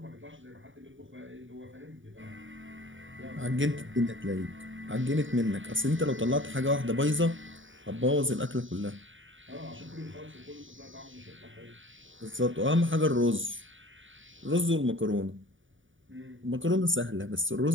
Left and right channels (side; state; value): left; late; 0.57 ms